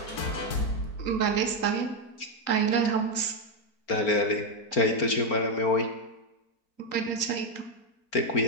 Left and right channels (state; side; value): late; right; 4.4 ms